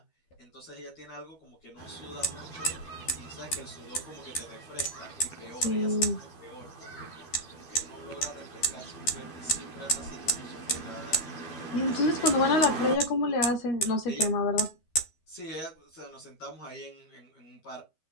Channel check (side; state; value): right; late; 13 ms